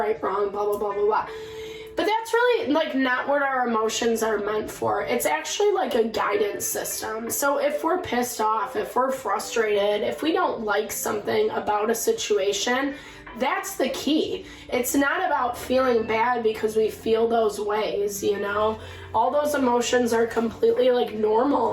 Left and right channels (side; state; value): both; identical; correlation 1.00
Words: wrong, blah, blah, blah, blah, blah. But that's really not what our emotions are meant for. It's actually a guidance system. So if we're pissed off, if we're frustrated, if we don't like something about a situation, that's the key. It's not about feeling bad because we feel those ways, All those emotions are completely